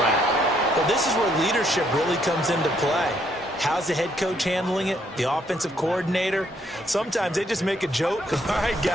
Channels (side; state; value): both; normal; correlation 0.71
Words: Well, this is where leadership really comes into play. How's the head coach handling it? The offensive coordinator? Sometimes they just make a joke. All right,